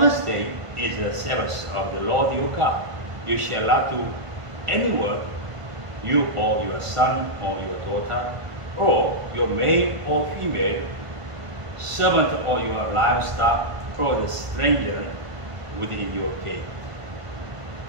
day is the Sabbath of the Lord your God. You shall not do any work, you or your son or your daughter, or your male or female, servant or your livestock, or the stranger within your gate.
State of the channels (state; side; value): late; left; 1.5 ms